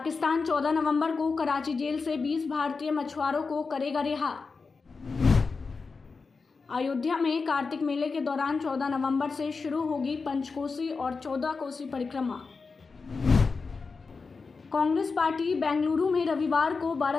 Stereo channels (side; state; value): right; quieter; 4.6 dB